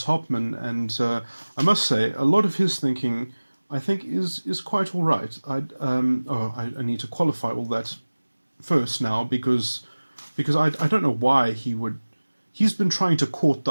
Hopman, and I must say, a lot of his thinking, I think, is quite all right. I need to qualify all that first now, because I don't know why he would... He's been trying to court the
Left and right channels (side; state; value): both; inverted; correlation -1.00